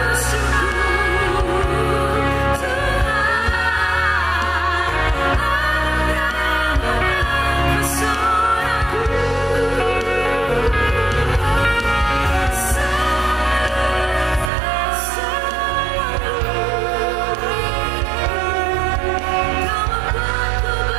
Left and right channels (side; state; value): left; drops out; at 14.5 s